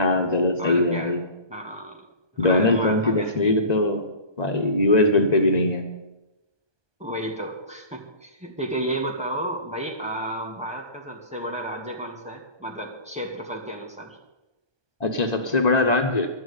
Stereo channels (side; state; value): left; late; 1.2 ms